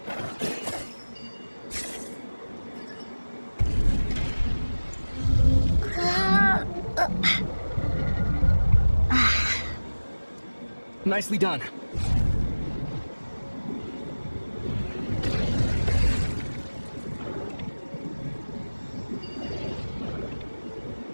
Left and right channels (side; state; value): both; inverted; correlation -1.00